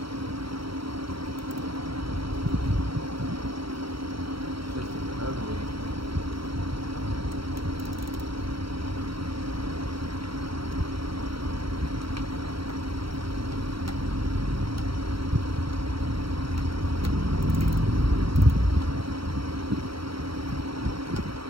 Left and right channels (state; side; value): late; left; 0.75 ms